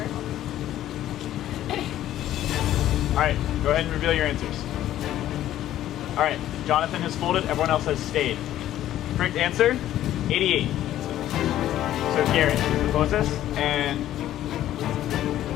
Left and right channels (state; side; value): quieter; right; 12.8 dB